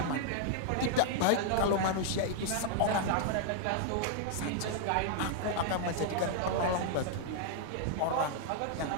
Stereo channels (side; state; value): both; different; correlation -0.01